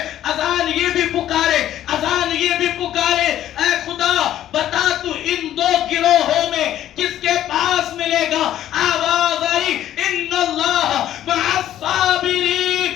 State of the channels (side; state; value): right; quieter; 12.1 dB